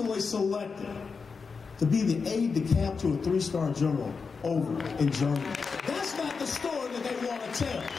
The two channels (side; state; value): right; quieter; 5.1 dB